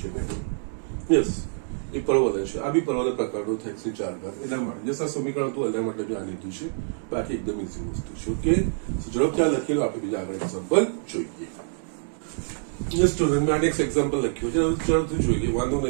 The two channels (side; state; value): left; silent; digital silence